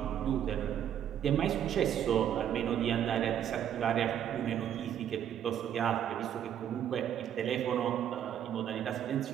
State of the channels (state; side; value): quieter; left; 9.9 dB